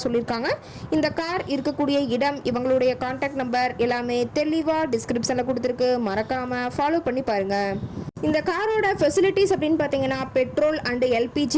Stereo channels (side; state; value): both; identical; correlation 1.00